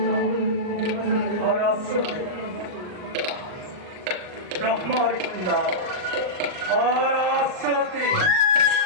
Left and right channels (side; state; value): left; late; 39 ms